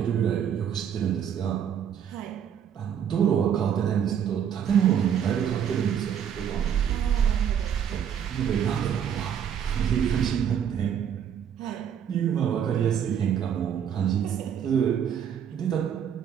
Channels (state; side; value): quieter; left; 8.6 dB